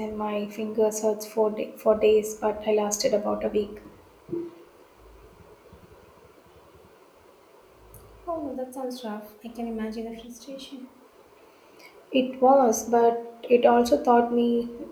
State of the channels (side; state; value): both; identical; correlation 1.00